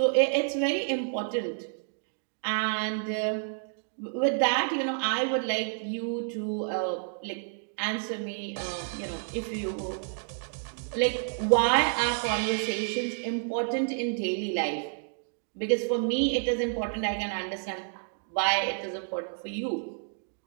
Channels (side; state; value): left; silent; digital silence